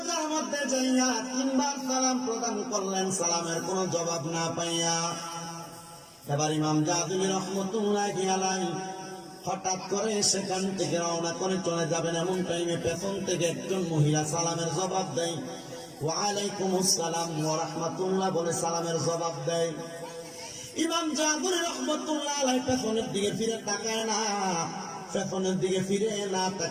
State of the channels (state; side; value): identical; both; correlation 1.00